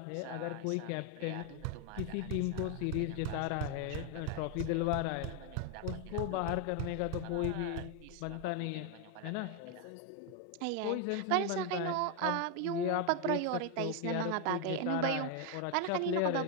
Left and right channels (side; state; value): both; different; correlation 0.01